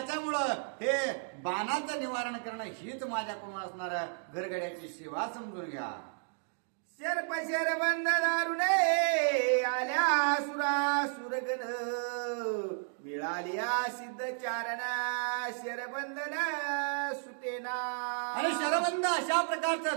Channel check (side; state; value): left; silent; 56 dB below the other